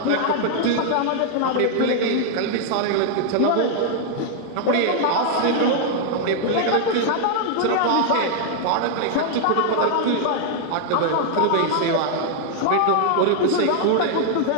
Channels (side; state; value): both; different; correlation -0.01